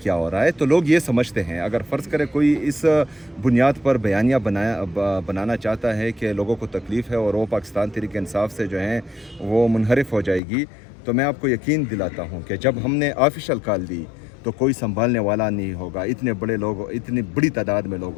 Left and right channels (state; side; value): drops out; right; at 10.4 s